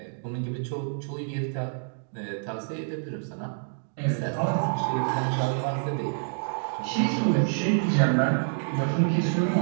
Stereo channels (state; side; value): silent; left; digital silence